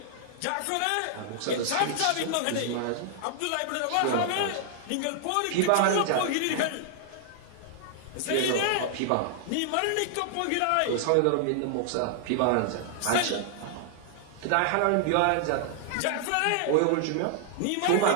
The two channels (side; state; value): both; different; correlation -0.01